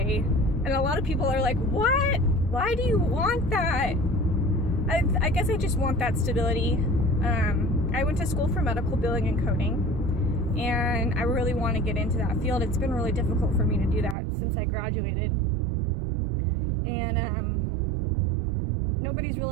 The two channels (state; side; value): drops out; left; at 14.2 s